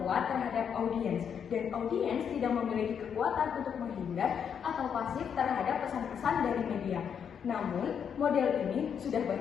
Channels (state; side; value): quieter; right; 7.6 dB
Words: kuat terhadap audiens dan audiens tidak memiliki kekuatan untuk menghindar atau pasif terhadap pesan-pesan dari media. Namun, model ini sudah